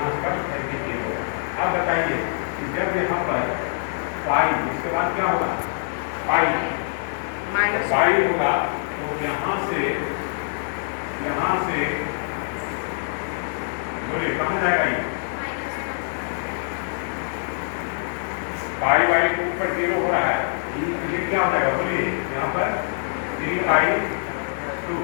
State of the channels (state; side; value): silent; right; digital silence